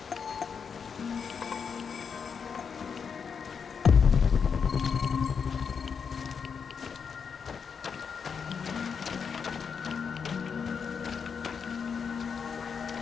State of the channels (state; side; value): quieter; right; 6.3 dB